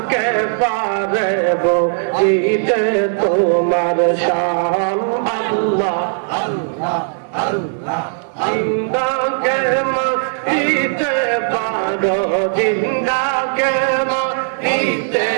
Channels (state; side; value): silent; left; 58 dB below the other